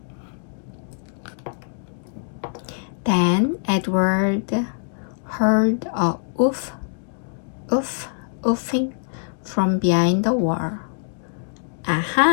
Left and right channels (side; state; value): right; silent; digital silence